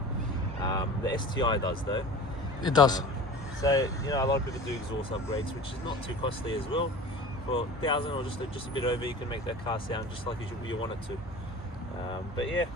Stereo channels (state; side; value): normal; both; correlation 0.38